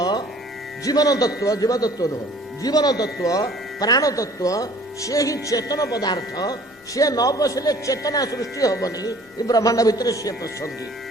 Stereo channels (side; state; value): both; normal; correlation 0.52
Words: ଜୀବନ ତତ୍ଵ, ଜୀବତତ୍ଵ ନୁହଁ, ଜୀବନ ତତ୍ଵ, ପ୍ରାଣ ତତ୍ଵ, ସେ ହିଁ ଚେତନ ପଦାର୍ଥ। ସେ ନ ପଶିଲେ ଚେତନା ସୃଷ୍ଟି ହବନି। ଏ ବ୍ରହ୍ମାଣ୍ଡ ଭିତରେ ସିଏ ପଶନ୍ତି।